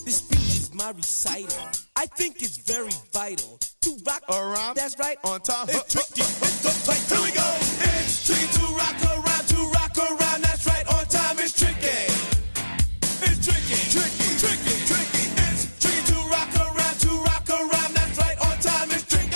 This speech is my recital. I think it's very vital to rock around. That's right. On time. It's tricky. It's here we go. It's tricky to rock around. To rock around. That's right. On time. It's tricky. It's tricky. Tricky. Tricky. Tricky. It's tricky to rock around. To rock around. That's right. On time. It's tricky.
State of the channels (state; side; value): inverted; both; correlation -1.00